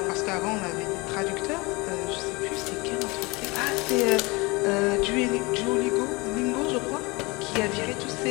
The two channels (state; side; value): quieter; right; 25.5 dB